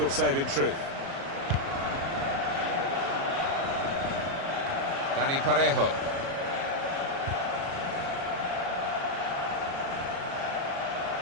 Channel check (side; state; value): left; late; 36 ms